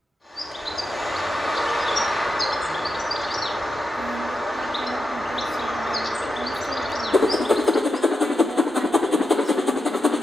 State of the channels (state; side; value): normal; both; correlation 0.88